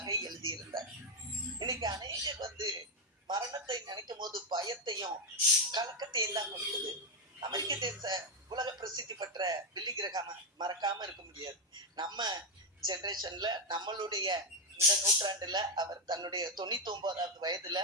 எழுதியிருந்தார். இன்னைக்கு அநேகர் மரணத்தை நினைக்கும் போது பயத்தையும் கலக்கத்தையும் தான் கொடுக்குது. அமெரிக்க தேச உலக பிரசித்தி பெற்ற பில்லி கிரஹாம் மறக்காம இருக்க முடியாது. நம்ம ஜெனரேஷன்ல நம்மளுடைய இந்த நூற்றாண்டுல அவர் தன்னுடைய 99வது வயதுல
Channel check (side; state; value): both; normal; correlation 0.05